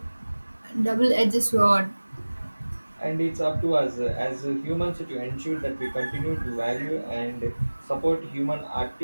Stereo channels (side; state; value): both; inverted; correlation -1.00